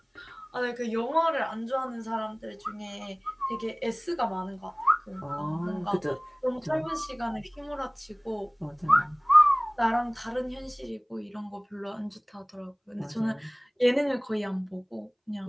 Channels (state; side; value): identical; both; correlation 1.00